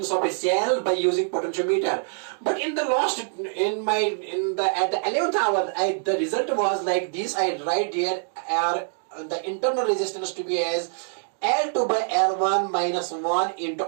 of a cell by using potentiometer. But in the last at the 11th hour, the result was like this. I write here the internal resistance to be as L2 by L1 minus 1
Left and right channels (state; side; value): silent; left; digital silence